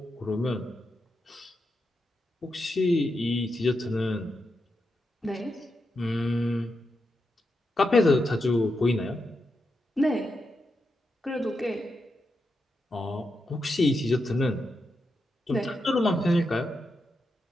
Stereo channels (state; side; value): normal; both; correlation 0.86